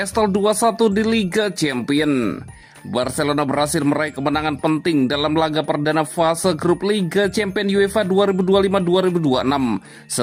2-1 di Liga Champions. Barcelona berhasil meraih kemenangan penting dalam laga perdana fase grup Liga Champions UEFA 2025-2026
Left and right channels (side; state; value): both; identical; correlation 1.00